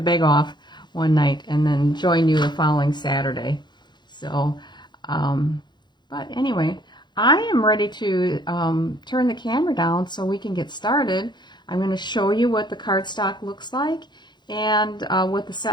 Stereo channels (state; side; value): late; right; 0.21 ms